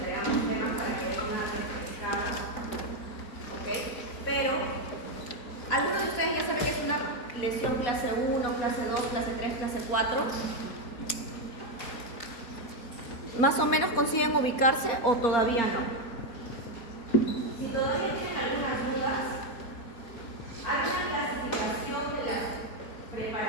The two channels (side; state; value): right; late; 4.1 ms